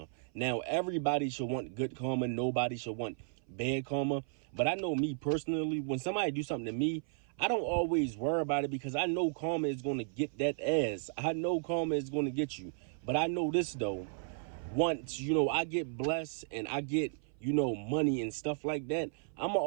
Now, everybody should want good karma. Nobody should want bad karma. But I know me personally, when somebody do something to me, I don't always worry about it because I know karma is going to get that ass. I know karma is going to get you. But I know this, though. Once, you know, I get blessed and I get, you know, money and stuff like that, I'm going to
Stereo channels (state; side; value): silent; left; 55 dB below the other